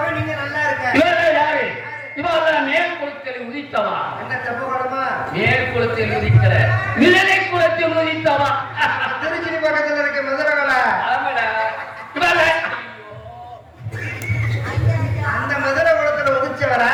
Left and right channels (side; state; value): both; identical; correlation 1.00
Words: நீங்க நல்லா இருக்க. இவெல்லாம் யாரு இவெல்லாம் மேல் குளத்தில் உதித்தவா என்ன தப்பு குணமா? மேல் குளத்தில் உதிக்கிற நிழலை குளத்தில் உதித்தவா திருச்சி பக்கத்துல இருக்க மதுரகலை. ஆமாடா இவெல்லாம் அந்த மதுரை குளத்துல உதிச்சவரா?